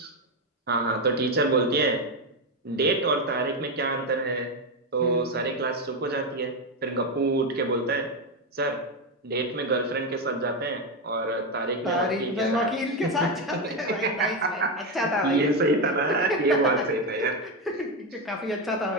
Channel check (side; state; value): both; normal; correlation 0.10